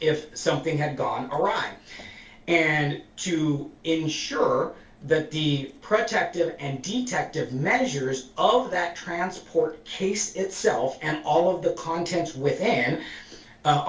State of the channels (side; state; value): both; identical; correlation 1.00